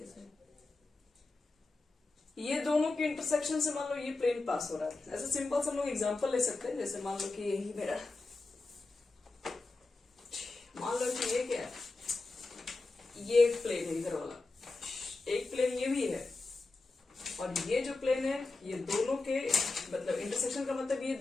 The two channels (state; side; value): quieter; right; 3.4 dB